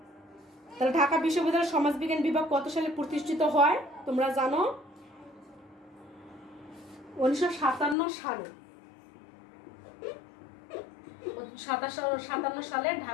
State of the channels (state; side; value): drops out; right; at 8.0 s